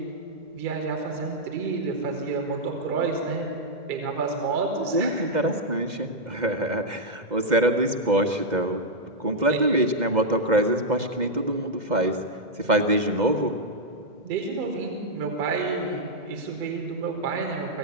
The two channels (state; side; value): late; left; 2.1 ms